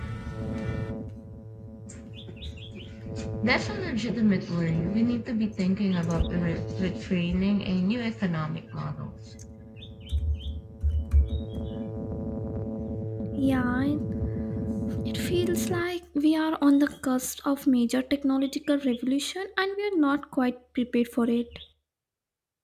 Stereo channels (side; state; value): both; identical; correlation 1.00